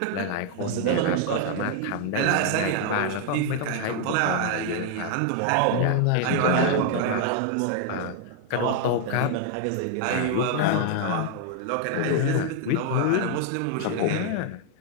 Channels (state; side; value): different; both; correlation 0.00